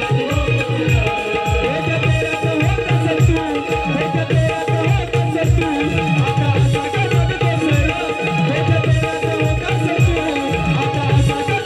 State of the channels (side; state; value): both; identical; correlation 1.00